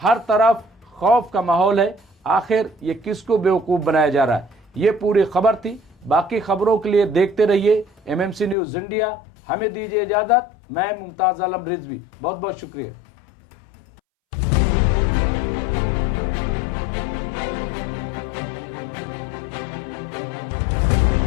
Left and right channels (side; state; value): right; drops out; at 8.6 s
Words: तरफ खौफ का माहौल है। आखिर ये किसको बेवकूफ बनाया जा रहा है? ये पूरी खबर थी। बाकी खबरों के लिए देखते रहिए MMC न्यूज इंडिया। हमें दीजिए इजाजत। मैं मुमताज आलम रिजवी, बहुत बहुत शुक्रिया।